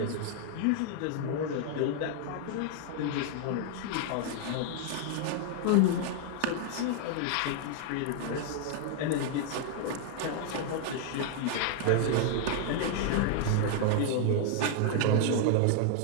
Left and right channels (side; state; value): both; different; correlation 0.00